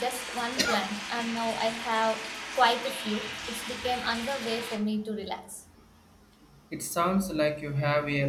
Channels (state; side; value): identical; both; correlation 1.00